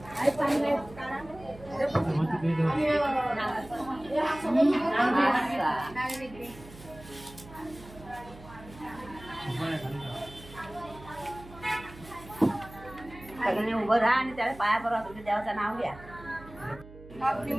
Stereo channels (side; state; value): right; noise; hum, 18 dB below the sound